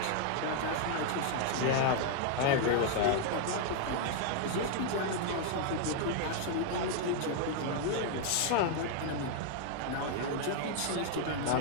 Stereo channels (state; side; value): different; both; correlation 0.00